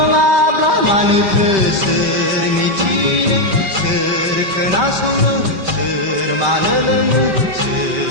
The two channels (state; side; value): late; left; 5.2 ms